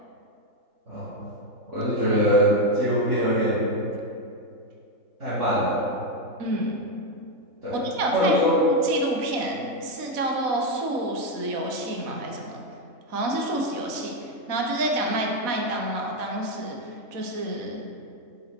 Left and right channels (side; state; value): left; late; 4.1 ms